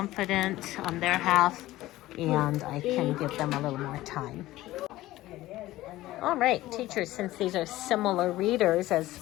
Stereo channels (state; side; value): quieter; right; 16.5 dB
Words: on their half, and I can give them a little more time. All right, teachers, since these are similar readers as